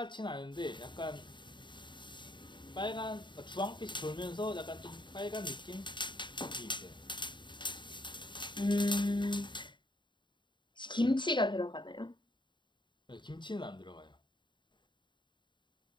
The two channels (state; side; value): late; right; 0.23 ms